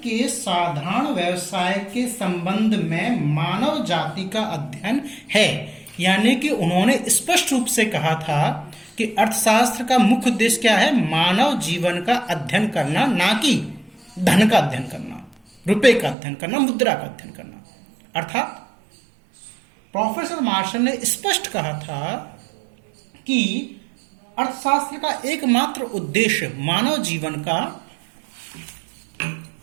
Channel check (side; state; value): left; drops out; at 16.2 s